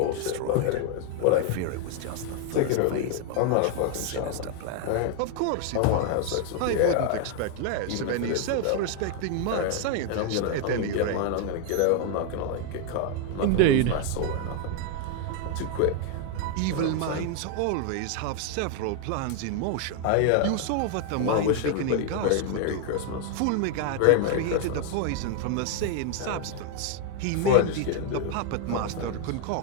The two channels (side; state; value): both; different; correlation 0.00